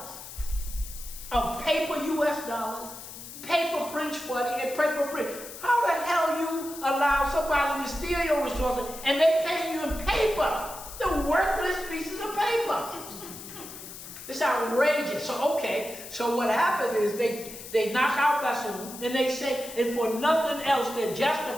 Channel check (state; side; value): noise; left; hiss, 13 dB below the sound